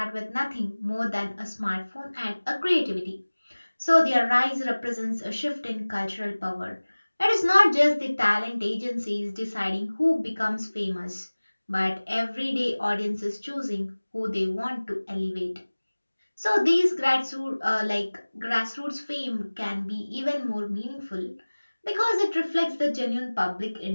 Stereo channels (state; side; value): inverted; both; correlation -1.00